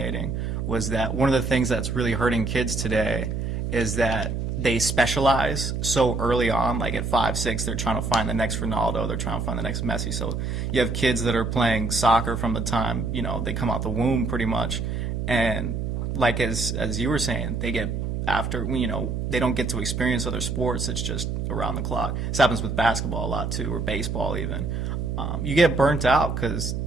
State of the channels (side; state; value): right; noise; hum, 2 dB below the sound